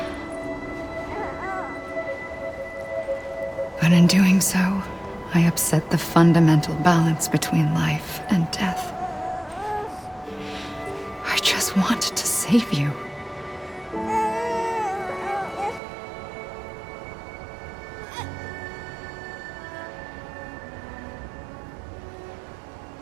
But in doing so, I upset the fundamental balance between life and death. I just wanted to save you.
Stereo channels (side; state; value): left; drops out; at 15.8 s